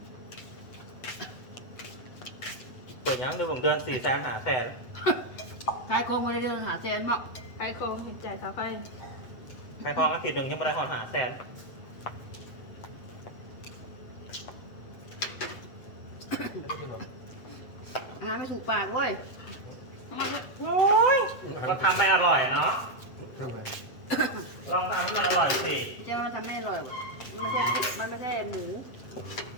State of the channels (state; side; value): late; right; 8.0 ms